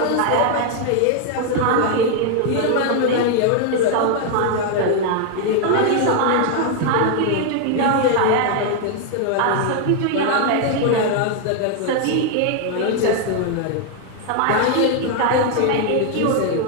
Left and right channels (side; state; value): both; different; correlation 0.00